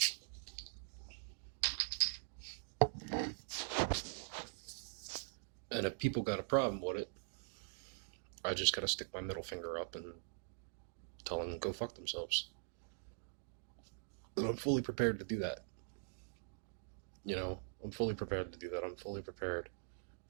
And if people got a problem with it, I just gotta stick my middle finger up and tell them to go fuck themselves. And I'm fully prepared to do that. You know, I'm fully prepared to do that. I'm fully prepared.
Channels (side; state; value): left; silent; digital silence